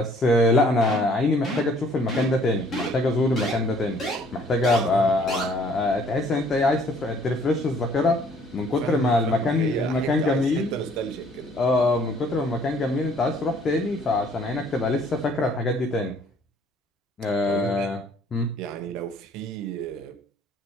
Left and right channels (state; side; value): normal; both; correlation 0.59